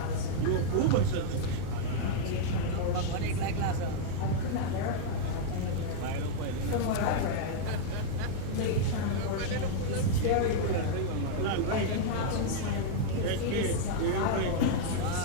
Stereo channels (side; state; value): both; different; correlation -0.01